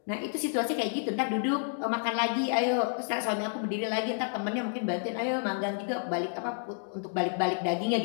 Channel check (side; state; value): right; silent; 58 dB below the other